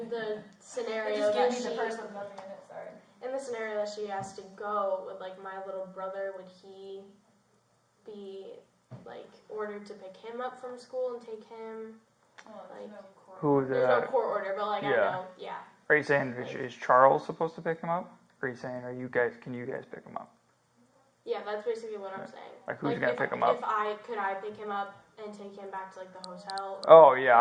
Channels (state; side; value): identical; both; correlation 1.00